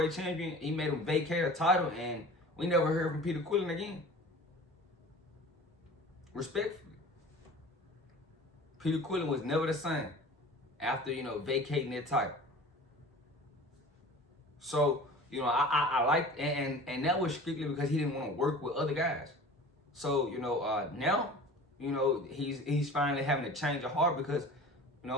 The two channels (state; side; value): normal; both; correlation 0.41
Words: champion, he made him vacate a title, and we never heard from Peter Quillen again. Respectfully, Peter Quillen was never the same after vacating that title. So, I like, and that was strictly because he didn't want to work with other guys. So, now, he's finally having to change of heart because,